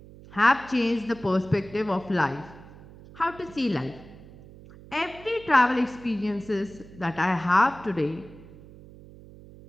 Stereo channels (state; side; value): noise; right; hum, 19 dB below the sound